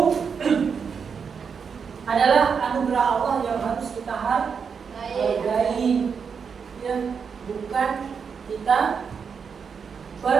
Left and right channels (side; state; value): left; quieter; 6.2 dB